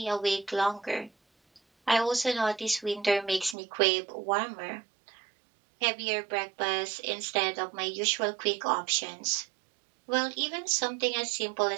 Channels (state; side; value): drops out; left; at 3.6 s